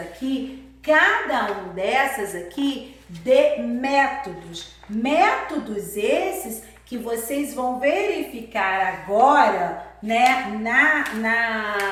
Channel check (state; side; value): identical; both; correlation 1.00